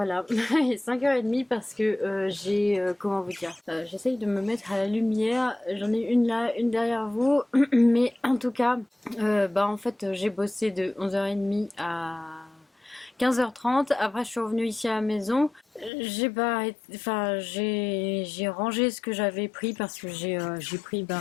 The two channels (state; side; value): drops out; right; at 15.9 s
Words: il est 5h30 parce que comment vous dire, j'essaye de me mettre à la lumière, j'en ai une là, une derrière vous, mais en tout cas, en fait j'ai bossé de 11h30 à 15h30, après je suis revenue ici à la maison, j'ai pas, enfin j'ai rangé ce que j'avais pris parce que j'ai pris